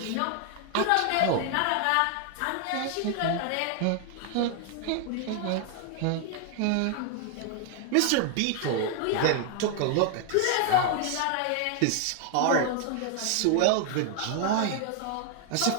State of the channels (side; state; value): both; different; correlation 0.00